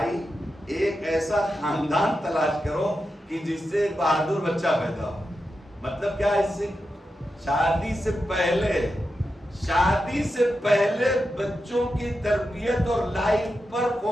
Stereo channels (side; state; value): both; normal; correlation 0.89